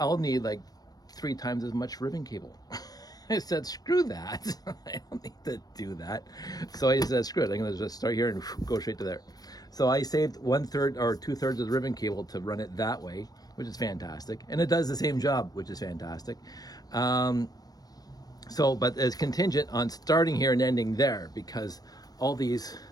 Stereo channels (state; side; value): late; right; 0.19 ms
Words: need like 3 times as much ribbon cable. I said, screw that. I don't need to do that. So I just said, screw it. I'm going to just start here and go straight to there. So I saved 1/3 or 2/3 of the ribbon cable to run it that way, which is fantastic. And it does the same job, which is fantastic. But it's contingent on starting here and ending there, because all these